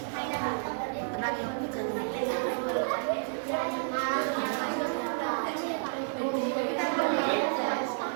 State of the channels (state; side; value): silent; left; digital silence